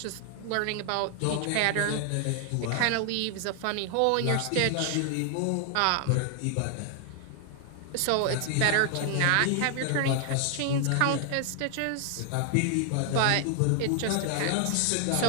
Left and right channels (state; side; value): different; both; correlation 0.00